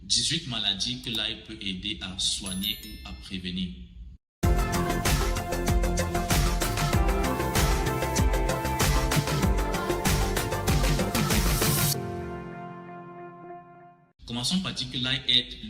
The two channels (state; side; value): identical; both; correlation 1.00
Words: 18 maladies que l'ail peut aider à soigner ou à prévenir. Commençons par dire que l'ail est